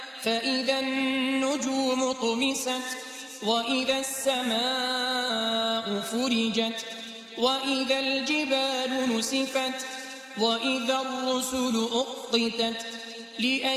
فإذا النجوم طمست وإذا السماء فرجت وإذا الجبال نسفت وإذا الرسل أقتت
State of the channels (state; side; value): identical; both; correlation 1.00